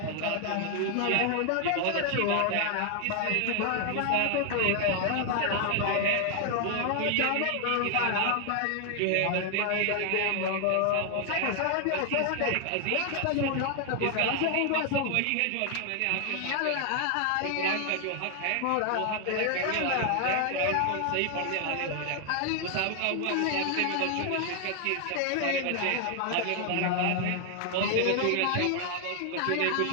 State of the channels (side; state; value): both; different; correlation 0.00